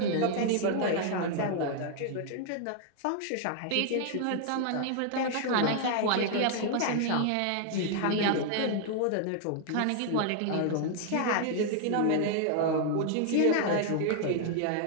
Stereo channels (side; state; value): both; different; correlation 0.00